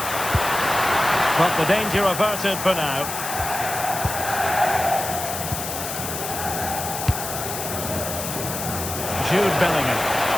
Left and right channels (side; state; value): left; noise; hiss, 6 dB below the sound